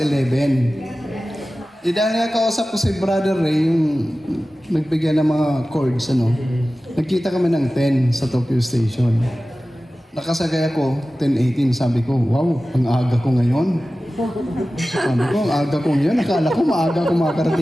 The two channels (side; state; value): both; normal; correlation 0.96